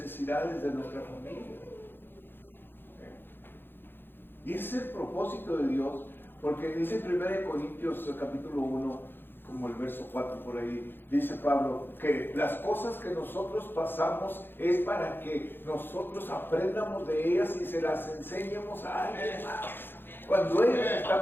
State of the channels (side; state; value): right; late; 0.10 ms